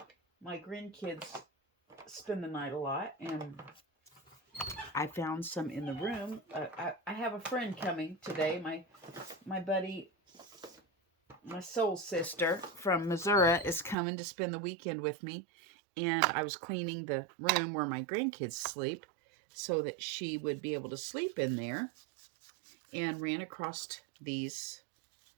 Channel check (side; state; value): left; drops out; at 14.0 s